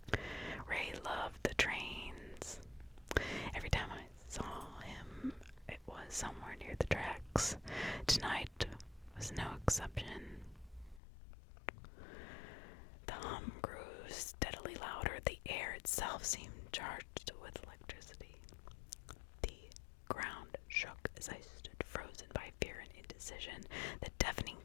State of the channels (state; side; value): drops out; right; at 11.0 s